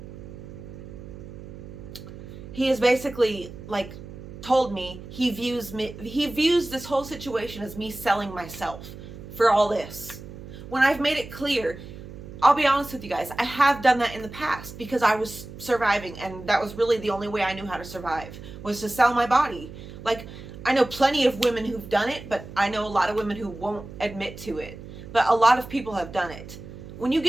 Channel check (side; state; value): right; noise; hum, 14 dB below the sound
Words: he has basically like told me he views this whole situation as me selling myself for all this. When I've made it clear, I'll be honest with you guys, I have done that in the past because I was surviving, and that was really the only way I knew how to survive, was to sell my body. Like, I know plenty of women who've done it, but I know a lot of women who won't admit to it. But a lot of people have done it. When you